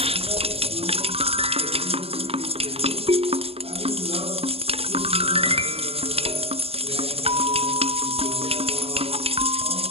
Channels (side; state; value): left; late; 0.28 ms